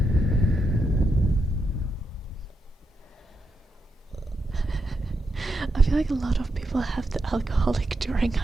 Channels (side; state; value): both; normal; correlation 0.84